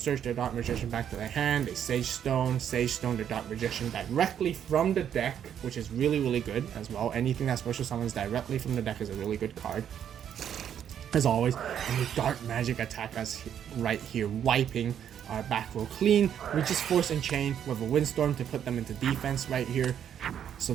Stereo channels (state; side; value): quieter; left; 9.2 dB